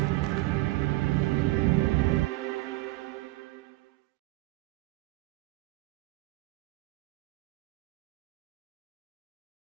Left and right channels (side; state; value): left; quieter; 19.5 dB